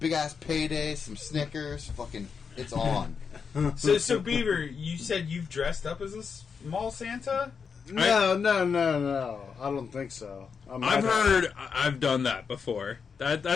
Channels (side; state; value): right; quieter; 6.0 dB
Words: ass Payday, some Snickers, fucking, it's on. So Beaver, you said you've dressed up as a small Santa? No. I don't think so. I've done that before.